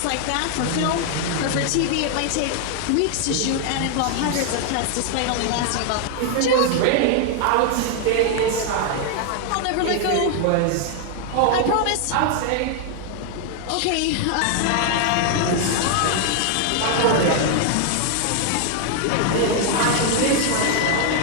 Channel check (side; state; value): both; different; correlation 0.00